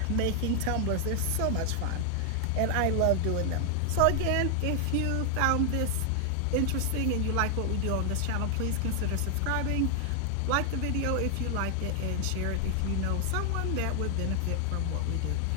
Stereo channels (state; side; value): different; both; correlation 0.00